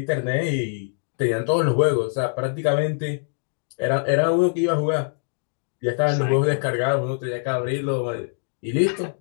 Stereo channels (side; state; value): right; silent; digital silence